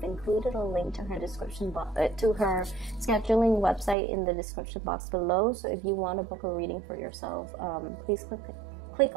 included a link to her description to her scheduling website in the description box below. So if you want to book a reading for yourself, please click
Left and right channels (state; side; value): drops out; left; at 4.0 s